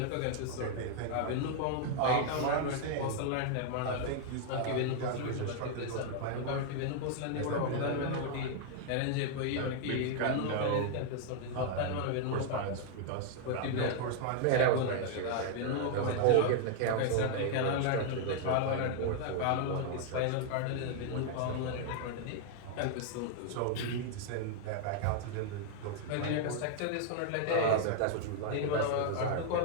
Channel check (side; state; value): both; different; correlation 0.00